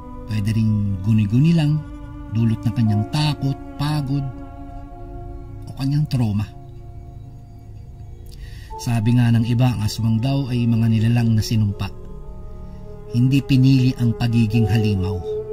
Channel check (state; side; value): identical; both; correlation 1.00